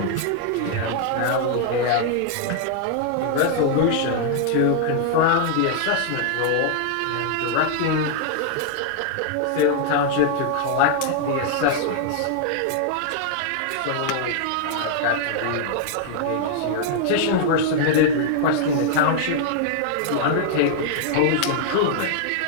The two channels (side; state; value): both; different; correlation 0.00